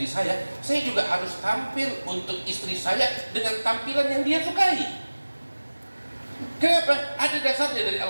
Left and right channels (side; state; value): both; inverted; correlation -1.00